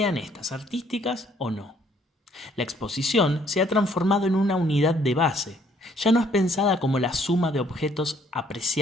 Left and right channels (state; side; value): normal; both; correlation 0.64